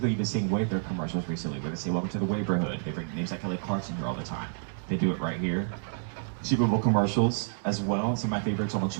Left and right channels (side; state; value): left; silent; digital silence